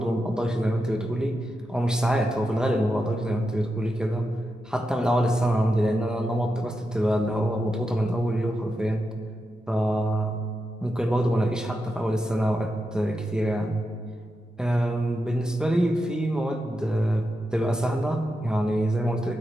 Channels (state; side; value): normal; both; correlation 0.87